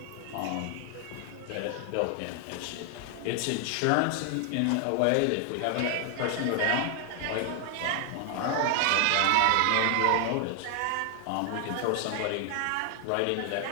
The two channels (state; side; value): different; both; correlation 0.00